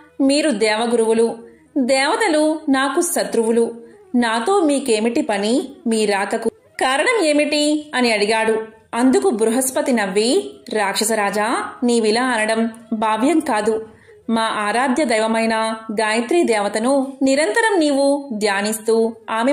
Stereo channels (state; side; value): identical; both; correlation 1.00